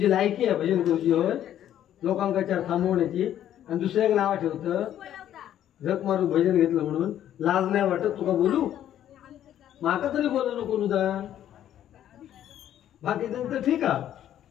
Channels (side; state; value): right; quieter; 11.2 dB